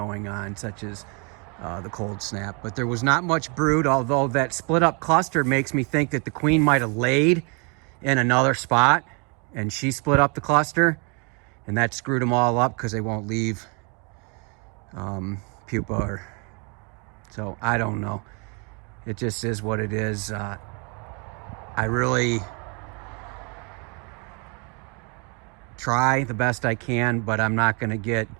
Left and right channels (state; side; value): quieter; left; 34.1 dB